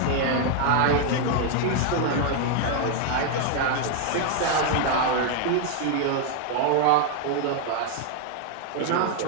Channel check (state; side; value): different; both; correlation 0.00